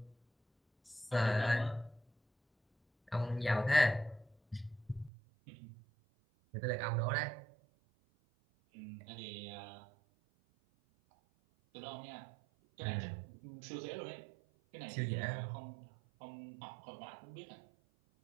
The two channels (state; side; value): drops out; left; at 5.1 s